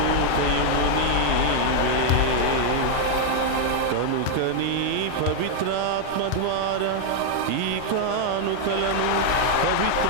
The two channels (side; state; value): both; different; correlation 0.00